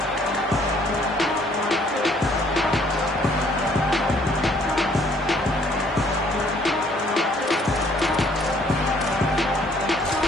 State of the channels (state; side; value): normal; both; correlation 0.62